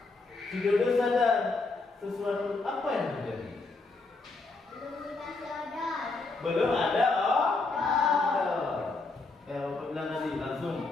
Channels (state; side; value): quieter; right; 3.6 dB